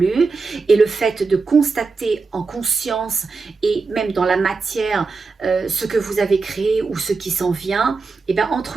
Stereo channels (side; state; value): left; quieter; 4.3 dB